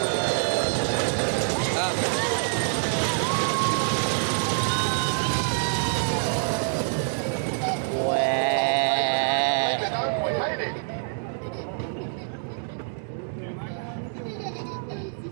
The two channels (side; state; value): left; silent; digital silence